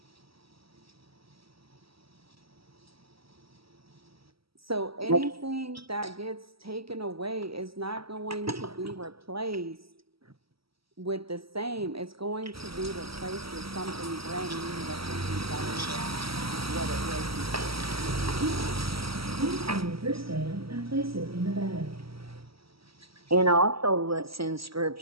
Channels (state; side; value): late; left; 0.75 ms